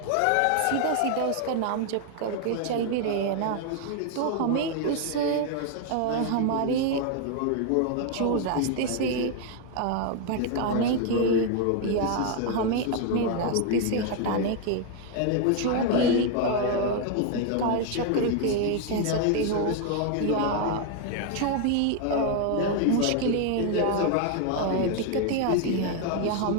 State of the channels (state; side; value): different; both; correlation 0.01